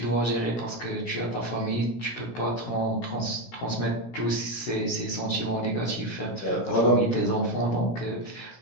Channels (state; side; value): late; right; 16 ms